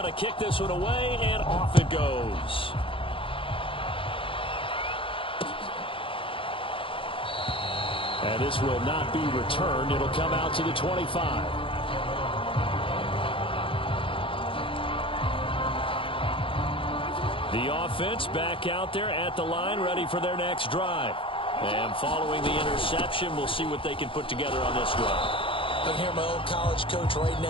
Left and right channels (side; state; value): right; late; 0.26 ms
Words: to kick this one away, and off it goes. And this will not be returned. It'll come out to the 25. The offense back out there at the line, ready for their next drive. And following the interception, we'll see what they can put together on this drive. I can hear my old college coach right